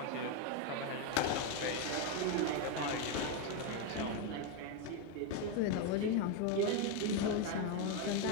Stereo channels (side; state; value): both; different; correlation 0.03